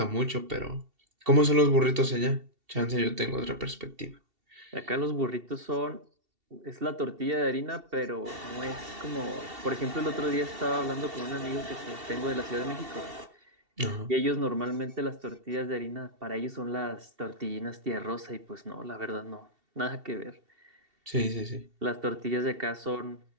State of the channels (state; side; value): late; left; 2.7 ms